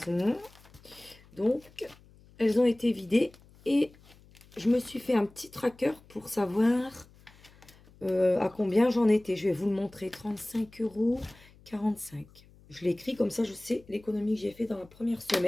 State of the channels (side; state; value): left; noise; hum, 26 dB below the sound